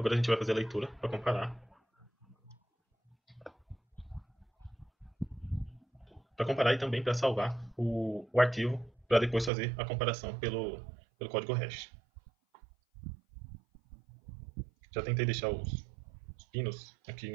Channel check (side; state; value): left; drops out; at 9.5 s